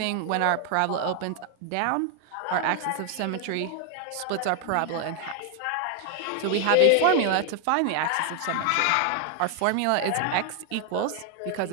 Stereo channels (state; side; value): different; both; correlation 0.00